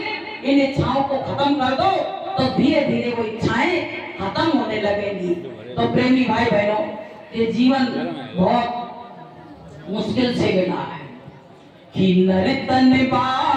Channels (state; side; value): identical; both; correlation 1.00